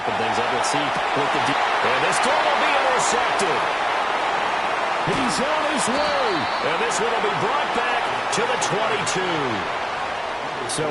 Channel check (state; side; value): identical; both; correlation 1.00